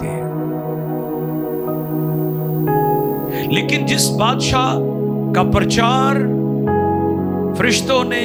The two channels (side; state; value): both; identical; correlation 1.00